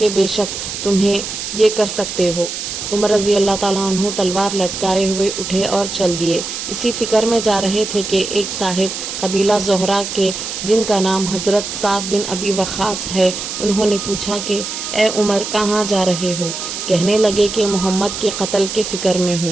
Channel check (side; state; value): right; noise; hiss, 6 dB below the sound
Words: بے شک تمہیں یہ کر سکتے ہو۔ عمر رضی اللہ تعالیٰ عنہ تلوار لٹکائے ہوئے اٹھے اور چل دیے۔ اسی فکر میں جا رہے تھے کہ ایک صاحب قبیلہ زہرہ کے جن کا نام حضرت سعد بن ابی وقاص ہے، انہوں نے پوچھا کہ اے عمر کہاں جا رہے ہو؟ کہنے لگے کہ محمد کے قتل کے فکر میں